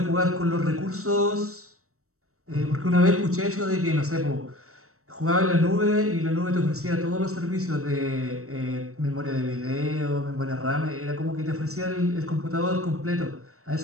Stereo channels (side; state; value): left; late; 0.64 ms